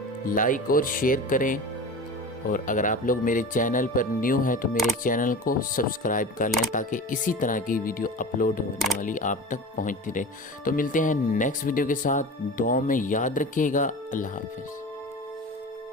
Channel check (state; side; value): normal; both; correlation 0.33